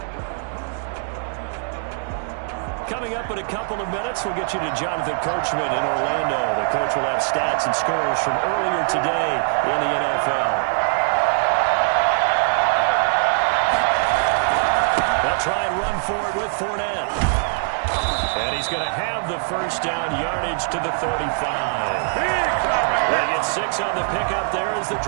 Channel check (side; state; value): left; silent; digital silence